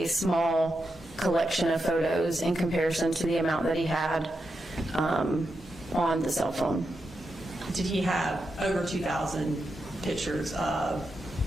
small collection of photos in comparison to the amount that he had on the cell phone. Did he have over 2,000 pictures of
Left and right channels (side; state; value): both; normal; correlation 0.87